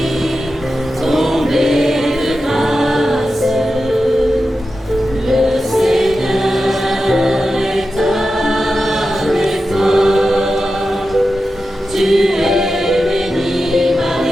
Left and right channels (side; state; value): both; normal; correlation 0.91